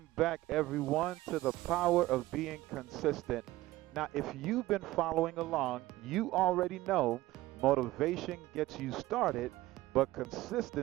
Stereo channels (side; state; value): left; quieter; 17.3 dB